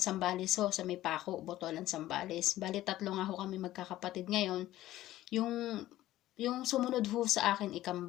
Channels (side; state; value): right; quieter; 14.9 dB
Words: Zambales ho, sa may Paco, Botolan, Zambales. Bali, 3 nga ho kami magkakapatid ngayon. Yung sumunod ho sa akin,